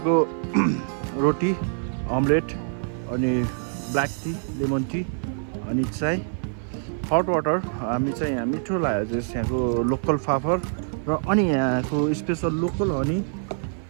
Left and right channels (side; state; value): left; silent; 56 dB below the other